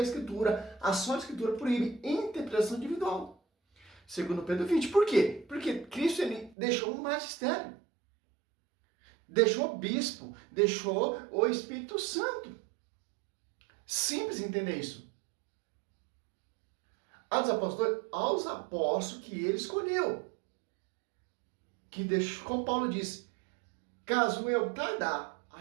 Escritura. A só Escritura proíbe interpretação individual. Segundo Pedro 20. Por quê? Porque Cristo ele deixou um magistério. Deixou o bispo, deixou o Espírito Santo. Simples entender isso. Aos apóstolos que ele escolheu. Que deixou, como Paulo diz, caso eu tardar,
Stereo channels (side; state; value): left; drops out; at 6.6 s